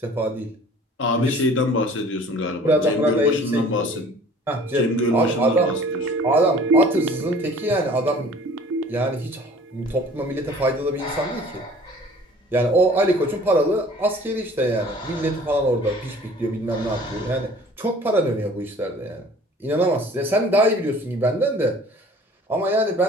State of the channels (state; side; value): normal; both; correlation 0.49